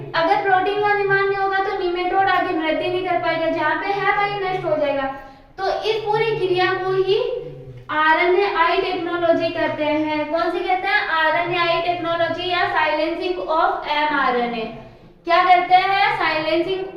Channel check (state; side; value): identical; both; correlation 1.00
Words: अगर प्रोटीन का निर्माण नहीं होगा तो निमेटोड आगे वृद्धि नहीं कर पाएगा, जहाँ पे है वही नष्ट हो जाएगा। तो इस पूरी क्रिया को ही RNAi टेक्नोलॉजी कहते हैं। कौन सी कहते हैं, RNAi टेक्नोलॉजी या साइलेंसिंग ऑफ mRNA। क्या करते हैं, साइलेंसिंग